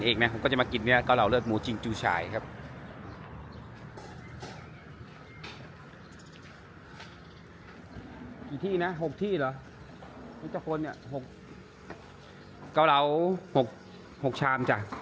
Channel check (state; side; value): identical; both; correlation 1.00